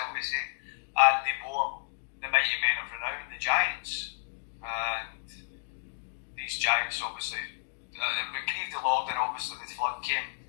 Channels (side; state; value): right; silent; digital silence